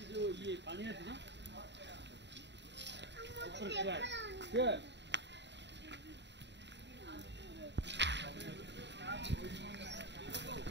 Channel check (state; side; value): late; left; 0.51 ms